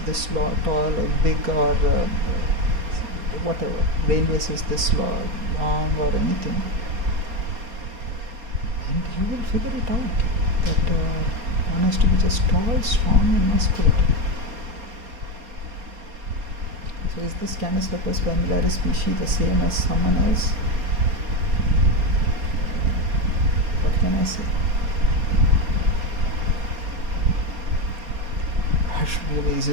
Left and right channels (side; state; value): left; late; 4.3 ms